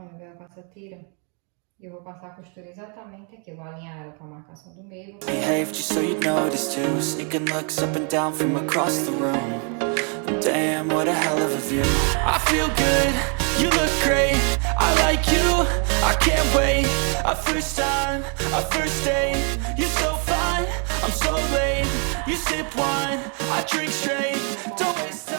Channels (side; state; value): left; quieter; 39.1 dB